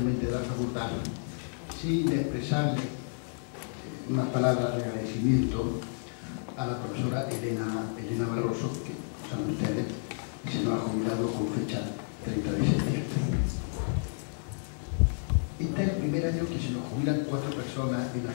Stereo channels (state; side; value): silent; right; digital silence